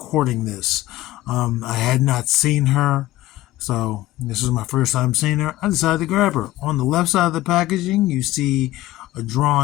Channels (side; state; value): right; quieter; 16.4 dB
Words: this. I had not seen her, so this is my first time seeing her. I decided to grab her. On the left side of the packaging, you see a